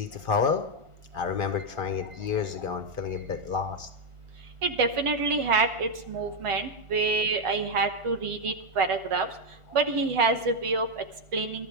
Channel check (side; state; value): left; late; 1.4 ms